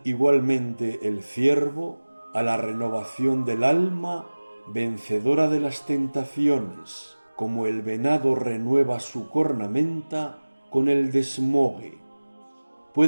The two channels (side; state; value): both; inverted; correlation -1.00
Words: igualmente el ciervo a la renovación del alma vencedora de las tentaciones, como el venado renueva su cornamenta con el desmogue.